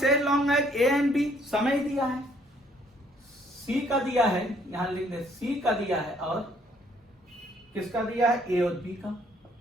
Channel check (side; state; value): both; normal; correlation 0.64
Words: as long as A and B, समय दिया है। सी का दिया है, यहां लिख दे, सी का दिया है और किसका दिया है, ए और बी का।